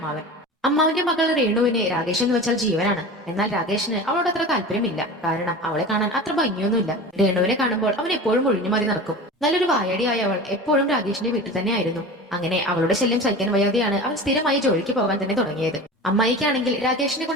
അമ്മാവിന്റെ മകൾ രേണുവിന് രാകേഷ് എന്ന് വെച്ചാൽ ജീവനാണ്. എന്നാൽ രാകേഷിന് അവളോട് അത്ര താല്പര്യമില്ല. കാരണം അവളെ കാണാൻ അത്ര ഭംഗിയൊന്നുമില്ല. രേണുവിനെ കാണുമ്പോൾ അവൻ എപ്പോഴും ഒഴിഞ്ഞു മതി നടക്കും. നല്ലൊരു വായടിയായ അവൾ എപ്പോഴും രാകേഷിന്റെ വീട്ടിൽ തന്നെയായിരുന്നു. അങ്ങനെ അവളുടെ ശല്യം സഹിക്കാൻ വയ്യാതെയാണ് അവൻ സ്ഥിരമായി ജോലിക്ക് പോകാൻ തന്നെ തുടങ്ങിയത്. അമ്മായിക്കാണെങ്കിൽ രാകേഷിനെ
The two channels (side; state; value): both; normal; correlation 0.33